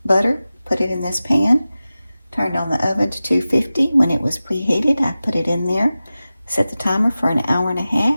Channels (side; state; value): both; inverted; correlation -0.95